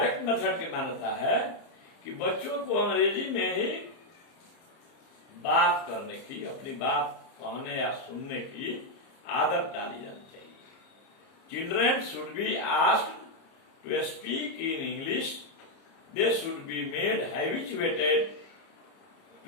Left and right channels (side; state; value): right; late; 30 ms